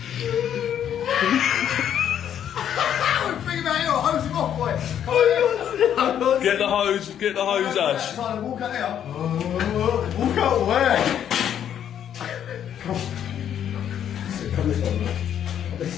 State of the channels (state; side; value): quieter; right; 9.6 dB